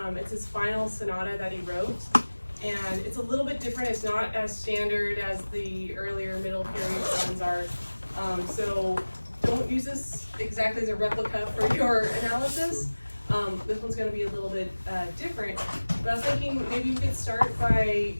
It's his final sonata that he wrote, and it's a little bit different. It's not as standard as the earlier middle period songs are. So don't use this exactly as a replica for your analysis. This one's going to be a little bit different, but I was thinking maybe we could start by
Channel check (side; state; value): both; inverted; correlation -1.00